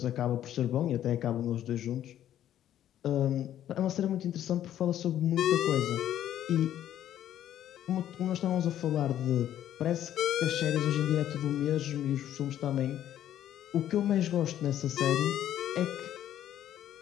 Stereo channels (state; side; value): quieter; right; 11.5 dB